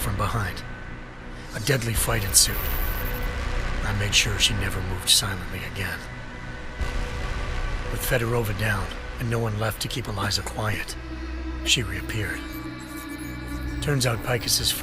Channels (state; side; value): identical; both; correlation 1.00